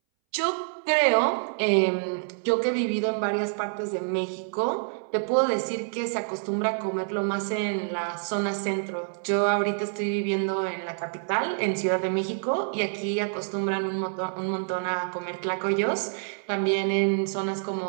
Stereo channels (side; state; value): left; silent; 60 dB below the other